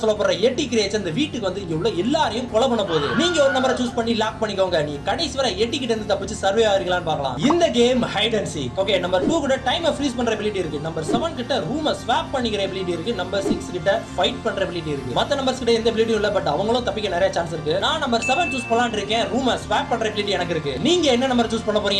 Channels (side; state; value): both; identical; correlation 1.00